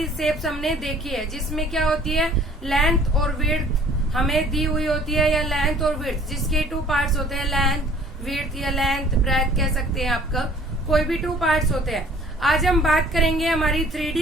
शेप्स हमने देखी है जिसमें क्या होती है, लेंथ और विड्थ हमें दी हुई होती है, या लेंथ और विड्थ जिसके 2 पार्ट्स होते हैं, लेंथ विड्थ या लेंथ ब्रेथ कह सकते हैं आपका, कोई भी 2 पार्ट्स होते हैं। आज हम बात करेंगे हमारी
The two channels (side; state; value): both; normal; correlation 0.54